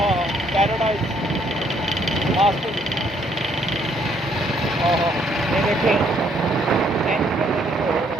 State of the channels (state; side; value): normal; both; correlation 0.68